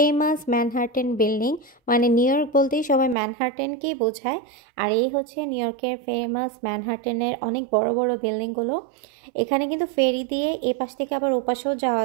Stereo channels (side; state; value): left; drops out; at 3.2 s